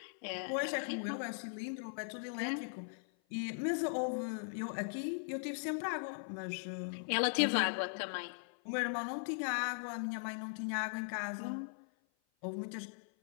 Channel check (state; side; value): silent; right; 52 dB below the other